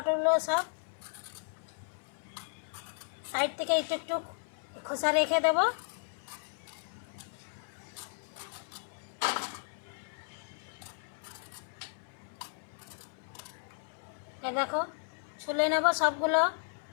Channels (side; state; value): right; silent; 55 dB below the other